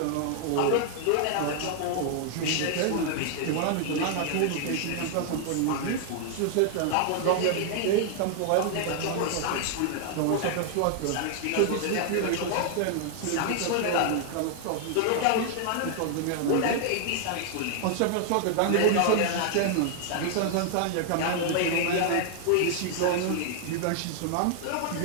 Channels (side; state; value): both; different; correlation 0.00